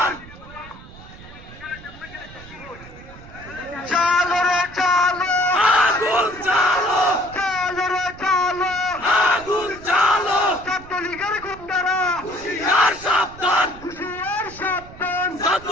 চালো রে চালো, আগুন চালো, চালো রে চালো, আগুন চালো, ছাত্রলীগের গুন্ডারা, হুশিয়ার সাবধান, হুশিয়ার সাবধান,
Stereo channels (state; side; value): noise; right; rumble, 18 dB below the sound